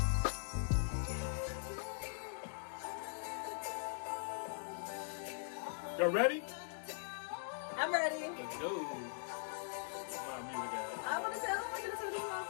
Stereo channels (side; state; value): right; silent; digital silence